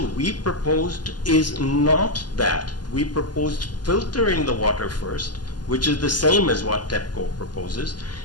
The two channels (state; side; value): late; right; 0.70 ms